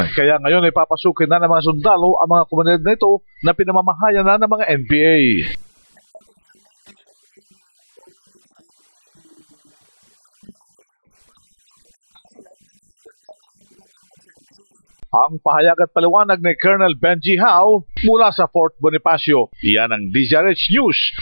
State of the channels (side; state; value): both; inverted; correlation -1.00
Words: Kaya ngayon ay papasukin na ng mga sundalo ang mga komunidad na ito na pinamamahayan na ng mga NPA. Ang pahayag at paliwanag ni Colonel Benji Hao mula sa Fort Bonifacio. Iyan ang DZRH News,